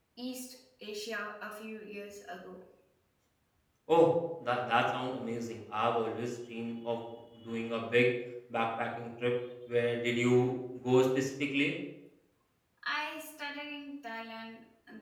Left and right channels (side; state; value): both; identical; correlation 1.00